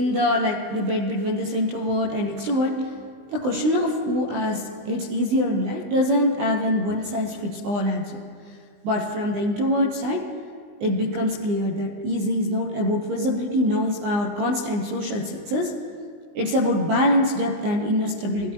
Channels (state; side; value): late; left; 20 ms